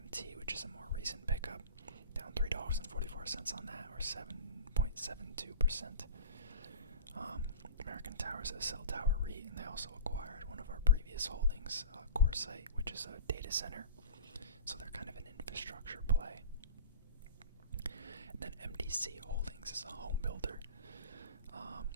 which is a more recent pickup. Down $3.44 on that, or 7.72%. American Tower is a cell tower REIT, and they also acquired one of our previous holdings, CoreSite, which is a data center. So they're kind of an infrastructure play. And then MDC Holdings is a home builder.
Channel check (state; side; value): inverted; both; correlation -0.36